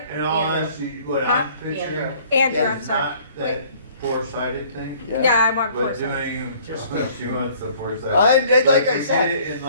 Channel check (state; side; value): inverted; both; correlation -0.55